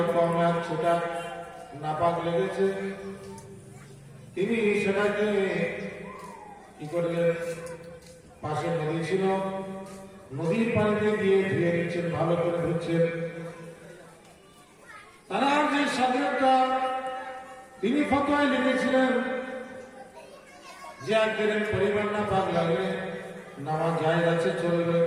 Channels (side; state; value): both; identical; correlation 1.00